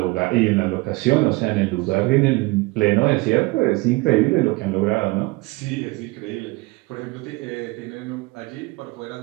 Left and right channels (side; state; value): left; quieter; 23.2 dB